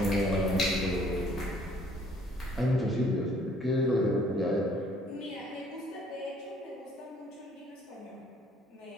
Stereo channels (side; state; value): both; normal; correlation 0.60